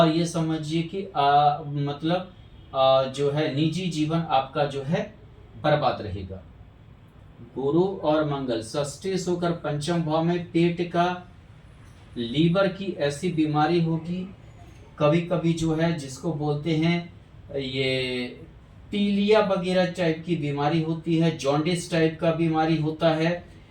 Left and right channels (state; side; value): identical; both; correlation 1.00